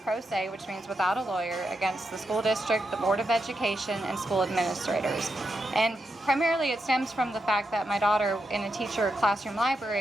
pro se, which means without a lawyer, against the school district, the Board of Education, and school administrators. And primarily, it stems from the fact that my daughter, in a teacher classroom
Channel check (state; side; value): normal; both; correlation 0.85